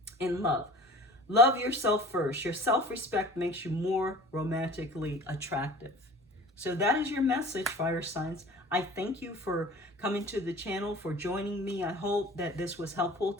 in love. Love yourself first. Your self-respect makes you more romantically attractive. So that is your message, fire signs. I thank you for coming to the channel, for joining me. I hope that this was helpful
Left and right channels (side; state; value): both; normal; correlation 0.43